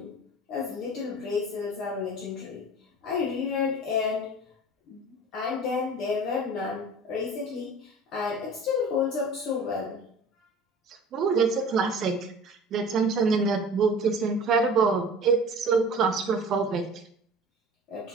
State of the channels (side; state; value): both; normal; correlation 0.41